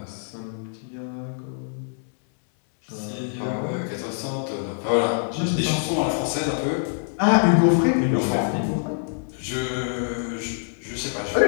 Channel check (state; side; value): silent; right; 62 dB below the other